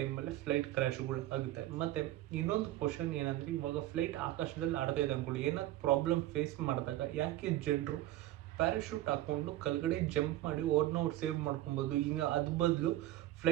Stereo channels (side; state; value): left; quieter; 14.9 dB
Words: ಟೈಮಲ್ಲಿ ಫ್ಲೈಟ್ ಕ್ರ್ಯಾಶ್ಗಳು ಆಗುತ್ತೆ. ಮತ್ತೆ ಇನ್ನೊಂದು ಕ್ವಶನ್ ಏನಂದ್ರೆ, ಇವಾಗ ಫ್ಲೈಟ್ ಆಕಾಶದಲ್ಲಿ ಆಡ್ತಾ ಇದೆ ಅನ್ಕೊಳ್ಳಿ, ಏನಾದ್ರು ಪ್ರಾಬ್ಲಮ್ ಫೇಸ್ ಮಾಡಿದಾಗ ಯಾಕೆ ಜನರು ಪ್ಯಾರಾಶೂಟ್ ಹಾಕೊಂಡು ಕೆಳಗಡೆ ಜಂಪ್ ಮಾಡಿ ಅವ್ರನ್ನ ಸೇವ್ ಮಾಡ್ಕೊಬೋದು? ಈಗ ಅದ್ ಬದಲು